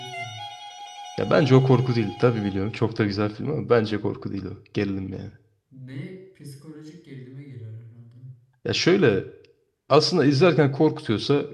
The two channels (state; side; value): identical; both; correlation 1.00